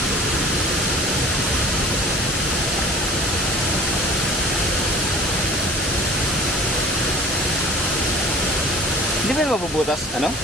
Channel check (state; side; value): normal; both; correlation 0.45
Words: Hindi ba mabubutas, ano?